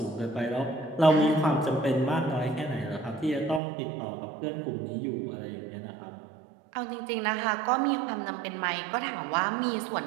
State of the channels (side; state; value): left; drops out; at 3.6 s